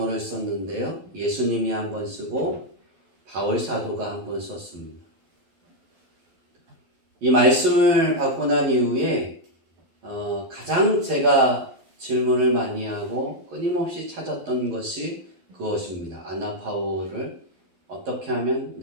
썼는데요. 예수님이 한 번 쓰고 바울 사도가 한 번 썼습니다. 이 말씀을 받고 난 이후에 가장 제가 질문을 많이 하고 끊임없이 찾았던 것이 그것입니다. 아나파오를 어떻게 하면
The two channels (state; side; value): late; left; 12 ms